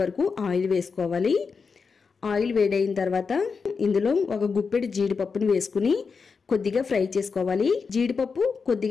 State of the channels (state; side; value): quieter; right; 5.2 dB